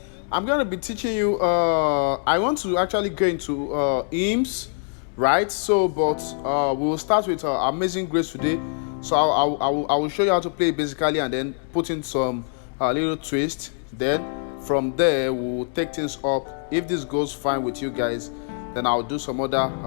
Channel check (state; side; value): silent; right; 57 dB below the other